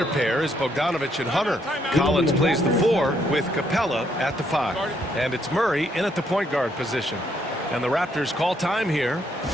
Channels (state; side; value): normal; both; correlation 0.72